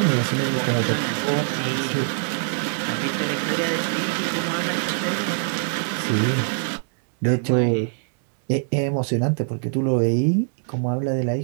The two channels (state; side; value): silent; left; digital silence